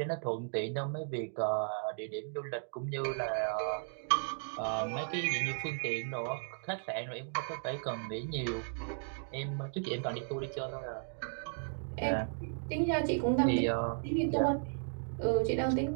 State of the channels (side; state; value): left; silent; digital silence